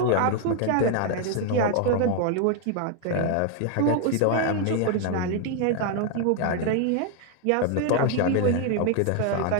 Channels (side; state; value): both; different; correlation 0.01